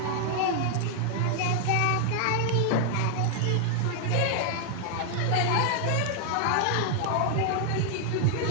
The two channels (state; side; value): different; both; correlation 0.00